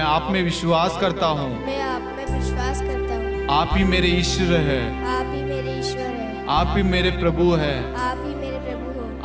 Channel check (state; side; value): identical; both; correlation 1.00